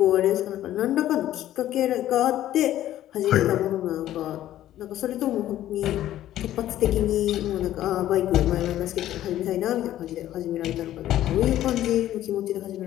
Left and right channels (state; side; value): quieter; right; 13.0 dB